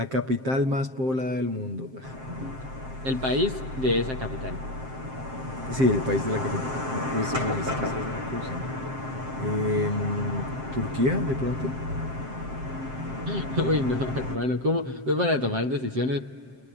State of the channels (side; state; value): left; late; 7.6 ms